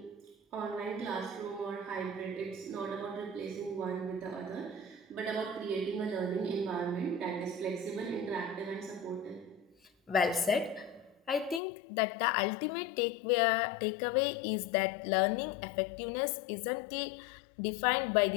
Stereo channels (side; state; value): right; drops out; at 11.6 s